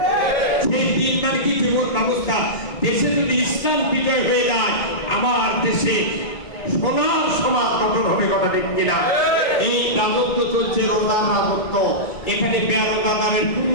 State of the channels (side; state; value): right; late; 2.2 ms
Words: সেই দিন মানে কি জীবন ব্যবস্থা, দেশে যদি ইসলাম বিজয় হয়ে যায় আমার দেশে সোনার সমাজ গঠন হবে কথা ঠিক কিনা? এই রাজত্ব চলছে রোজার রাজত্ব, এখানে বেরোজাদারের কোনো